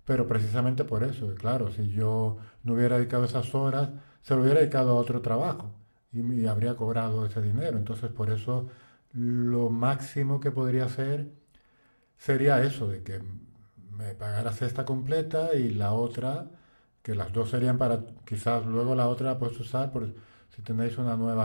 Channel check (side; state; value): both; inverted; correlation -1.00